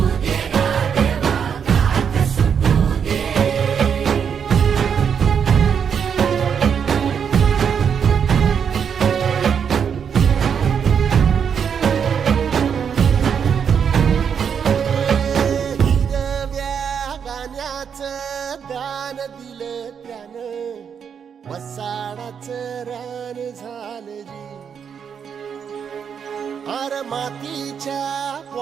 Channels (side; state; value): left; quieter; 7.3 dB